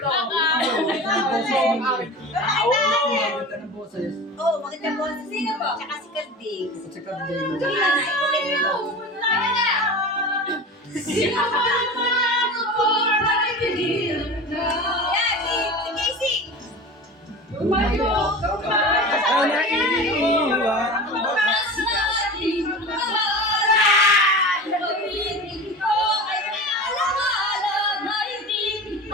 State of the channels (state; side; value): normal; both; correlation 0.32